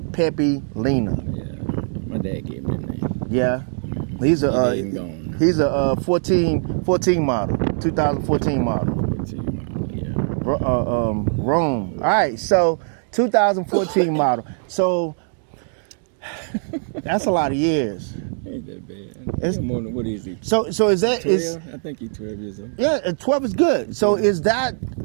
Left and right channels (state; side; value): silent; left; digital silence